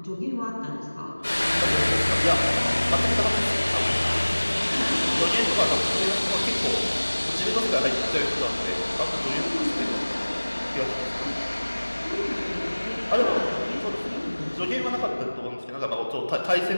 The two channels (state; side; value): inverted; both; correlation -1.00